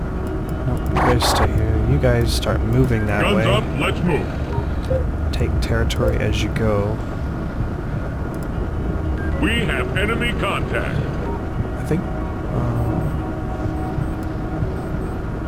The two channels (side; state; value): both; identical; correlation 1.00